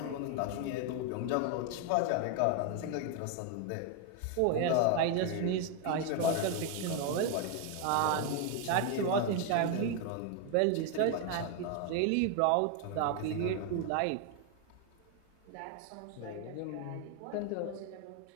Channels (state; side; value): different; both; correlation 0.01